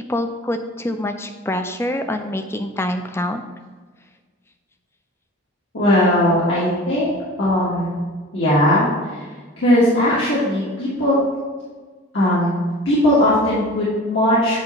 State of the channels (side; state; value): both; normal; correlation 0.40